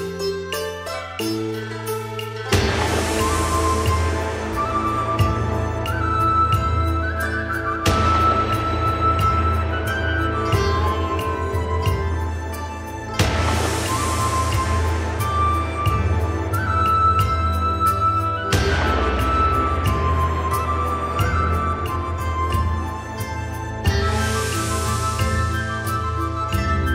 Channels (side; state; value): both; identical; correlation 1.00